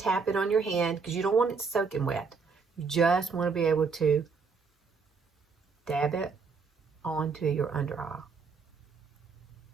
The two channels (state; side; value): quieter; left; 5.1 dB